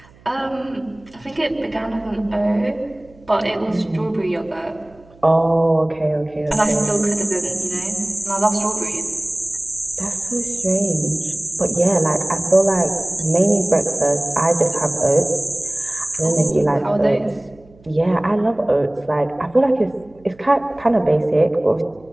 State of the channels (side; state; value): right; noise; hum, 27 dB below the sound